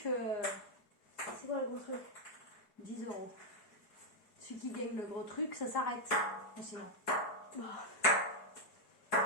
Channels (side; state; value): right; late; 4.7 ms